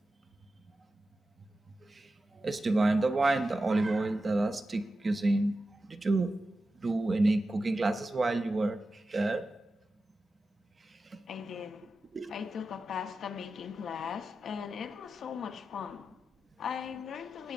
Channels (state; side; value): normal; both; correlation 0.92